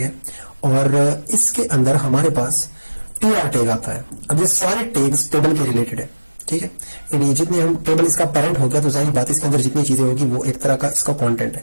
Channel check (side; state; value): both; inverted; correlation -1.00